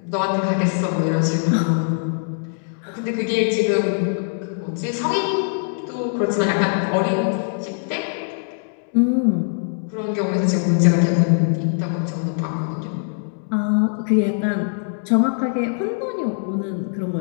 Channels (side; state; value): right; silent; digital silence